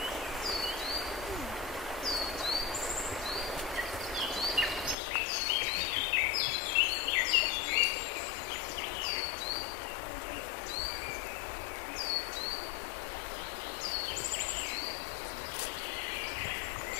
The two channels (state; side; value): drops out; right; at 5.0 s